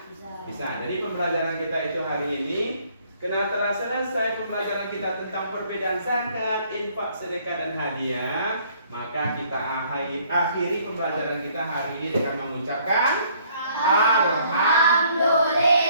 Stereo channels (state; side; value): inverted; both; correlation -0.62